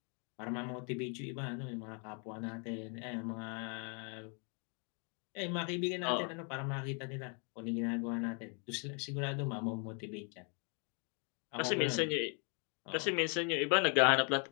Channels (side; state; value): right; quieter; 38.3 dB